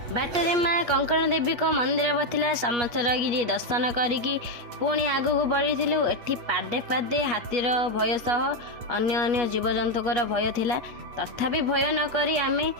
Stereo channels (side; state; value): left; late; 8.4 ms